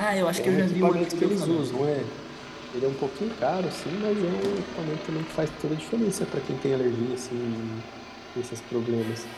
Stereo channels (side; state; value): both; identical; correlation 1.00